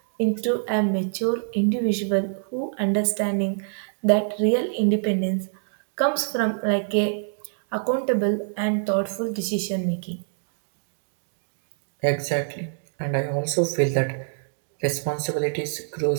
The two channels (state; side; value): silent; left; digital silence